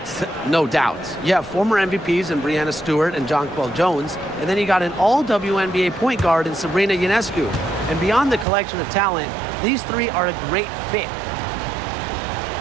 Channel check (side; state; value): left; drops out; at 8.5 s